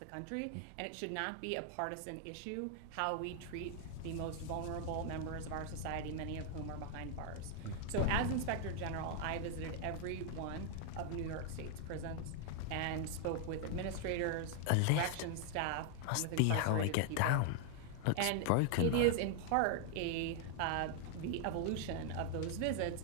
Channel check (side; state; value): both; different; correlation 0.00